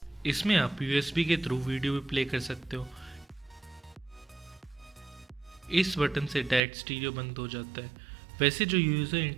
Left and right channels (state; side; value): drops out; left; at 6.6 s